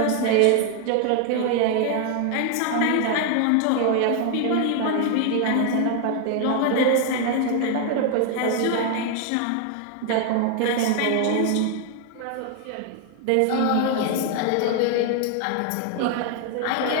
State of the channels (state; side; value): different; both; correlation 0.00